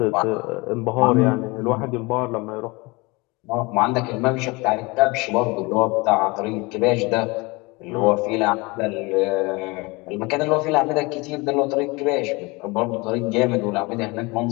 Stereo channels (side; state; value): right; quieter; 25.4 dB